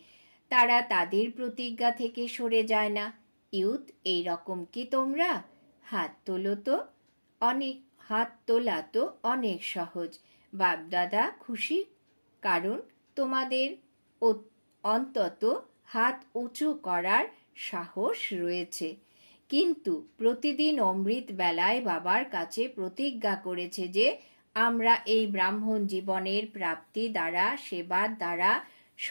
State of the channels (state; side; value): inverted; both; correlation -1.00